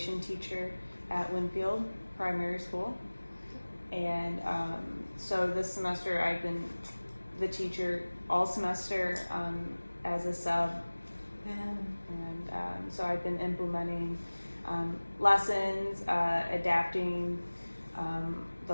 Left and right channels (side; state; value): both; inverted; correlation -1.00